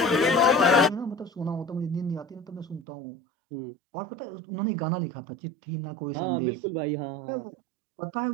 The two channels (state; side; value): drops out; left; at 2.9 s